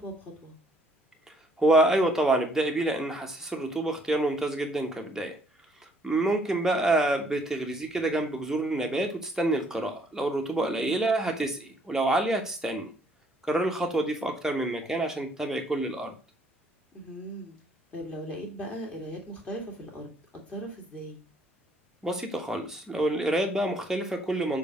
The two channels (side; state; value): both; normal; correlation 0.65